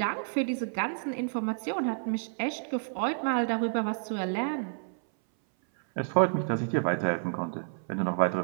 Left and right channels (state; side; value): silent; left; 58 dB below the other